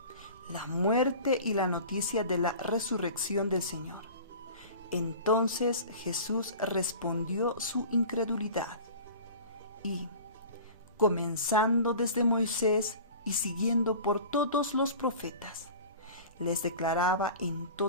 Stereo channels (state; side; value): inverted; both; correlation -0.39